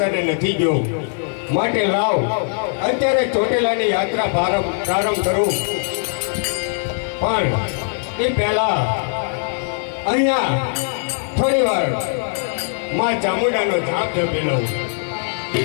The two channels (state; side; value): silent; right; digital silence